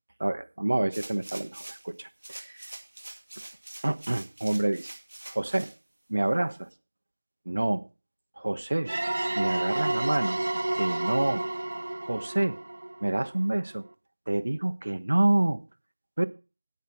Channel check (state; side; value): inverted; both; correlation -1.00